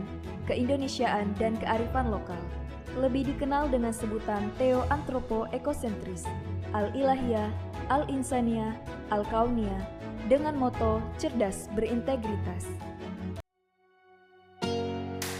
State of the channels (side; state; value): both; identical; correlation 1.00